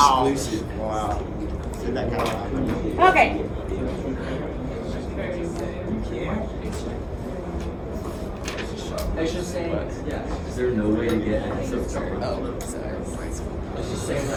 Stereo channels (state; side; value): identical; both; correlation 1.00